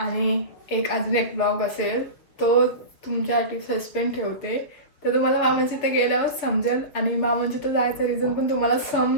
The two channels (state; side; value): late; right; 7.1 ms